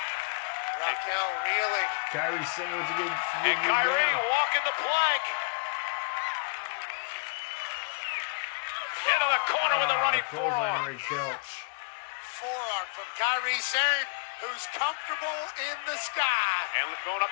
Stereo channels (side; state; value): right; quieter; 33.4 dB